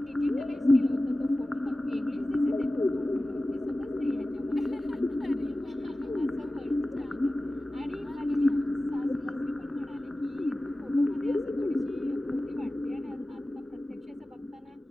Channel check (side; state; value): both; normal; correlation 0.96